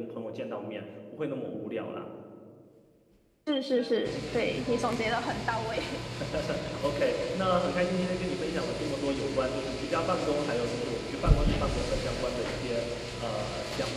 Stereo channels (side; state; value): both; identical; correlation 1.00